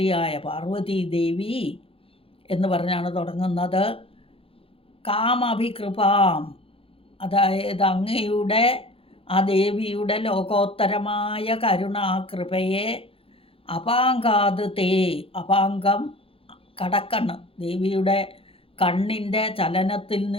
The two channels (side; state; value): right; late; 0.27 ms